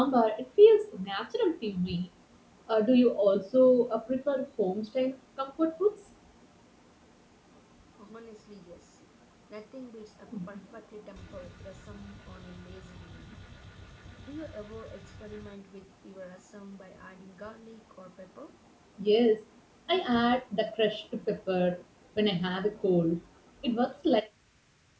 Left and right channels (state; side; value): identical; both; correlation 1.00